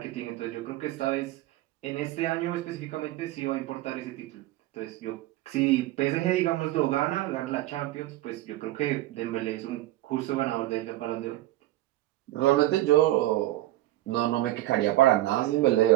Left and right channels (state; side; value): quieter; left; 15.9 dB